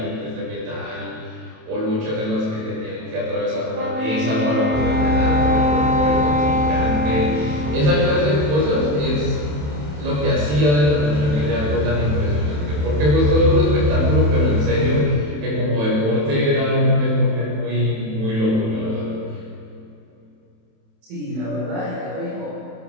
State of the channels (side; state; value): left; late; 27 ms